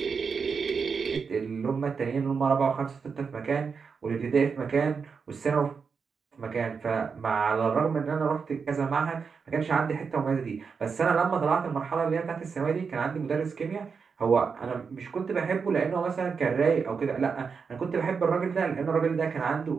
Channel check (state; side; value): quieter; left; 5.6 dB